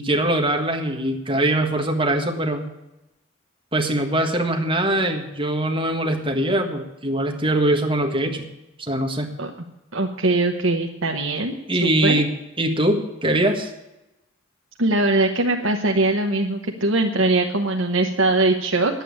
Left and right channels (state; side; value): normal; both; correlation 0.30